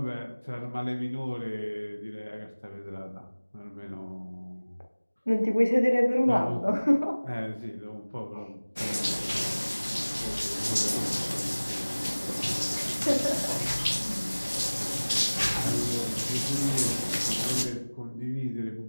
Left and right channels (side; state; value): both; inverted; correlation -1.00